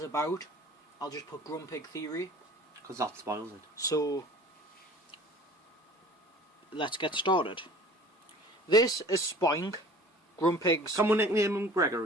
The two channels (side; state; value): both; normal; correlation 0.46